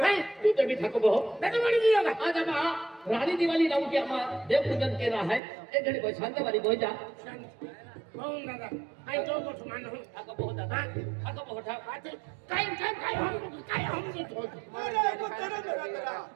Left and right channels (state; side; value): drops out; left; at 5.4 s